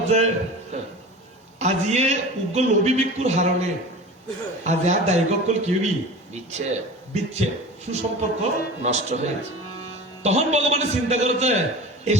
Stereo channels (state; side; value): normal; both; correlation 0.35